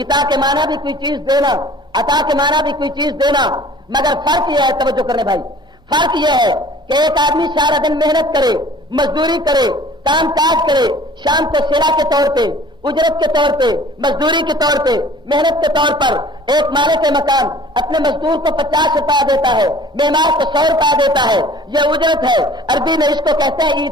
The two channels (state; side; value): normal; both; correlation 0.49